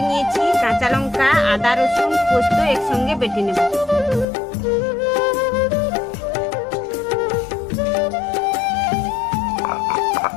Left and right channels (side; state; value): right; drops out; at 4.2 s